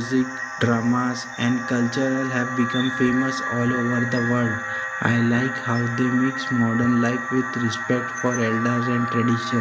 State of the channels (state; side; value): identical; both; correlation 1.00